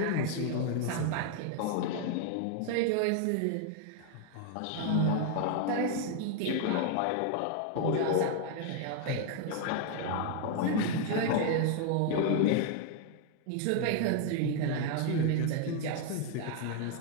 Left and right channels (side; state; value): both; different; correlation 0.00